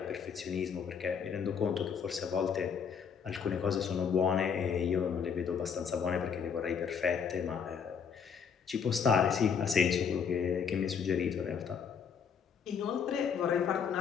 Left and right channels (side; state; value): right; quieter; 6.8 dB